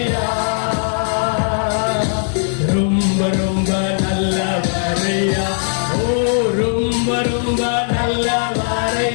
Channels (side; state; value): right; silent; digital silence